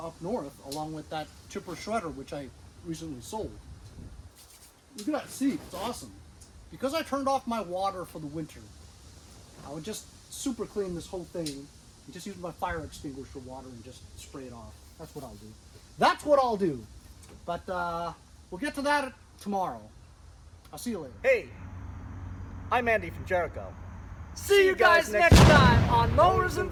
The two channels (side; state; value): both; identical; correlation 1.00